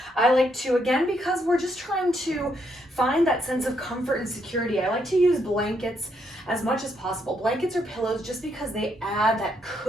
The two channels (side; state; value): both; normal; correlation 0.75